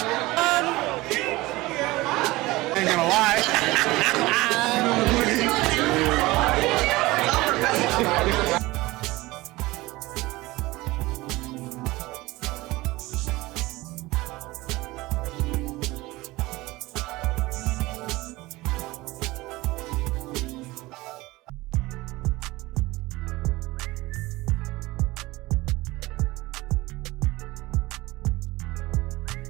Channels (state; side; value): quieter; left; 20.3 dB